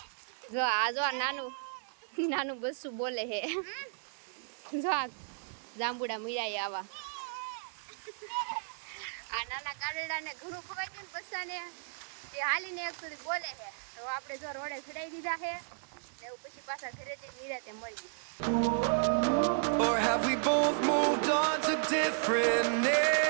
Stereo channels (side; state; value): left; silent; digital silence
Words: જો આ જો નાનું બસ્સું બોલે હે જો આ જાંબુડા મીરાય આવા. આ નાના ગાડરડાને ઘણું ખવાઈ ગયું ને બસ્સાને તે હાલીને એક સુધી બોલે છે તો આપણે જો રોડે ચડાઈ દીધા છે ને એવું પછી પાછા ઘરે જઈને નિરાતે મળી. Or have we both moved on to different names?